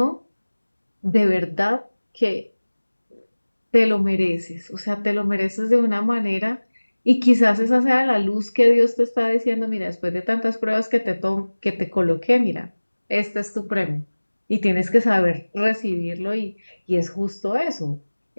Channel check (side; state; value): both; inverted; correlation -1.00